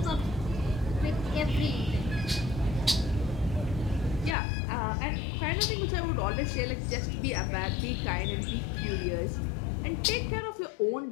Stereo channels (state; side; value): drops out; right; at 4.4 s